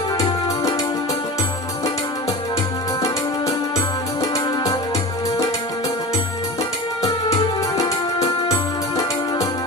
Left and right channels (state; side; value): normal; both; correlation 0.30